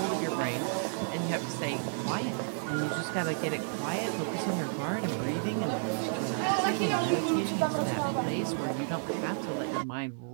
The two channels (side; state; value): left; silent; digital silence